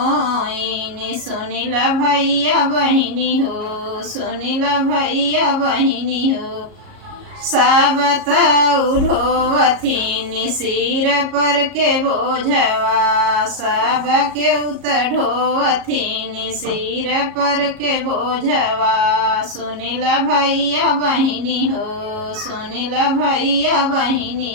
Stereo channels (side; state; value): left; late; 37 ms